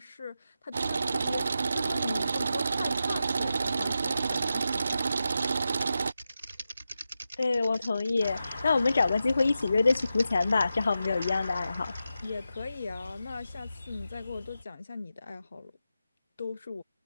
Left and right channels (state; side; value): inverted; both; correlation -0.90